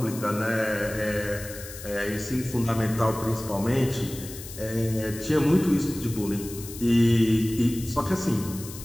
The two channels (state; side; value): noise; left; hiss, 13 dB below the sound